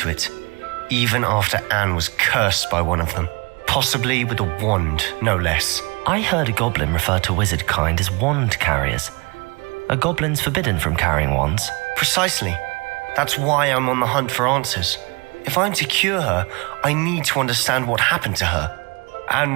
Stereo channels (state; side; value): quieter; left; 29.0 dB